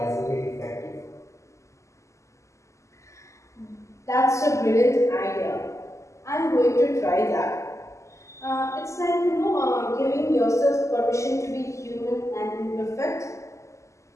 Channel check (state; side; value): late; right; 0.14 ms